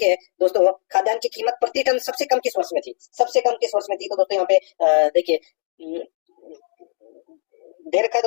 दोस्तों, खाद्यान्न की कीमत प्रति टन सबसे कम किस वर्ष में थी? सबसे कम किस वर्ष में थी? तो दोस्तों यहाँ पे देखिए दे रखा है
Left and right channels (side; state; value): right; silent; digital silence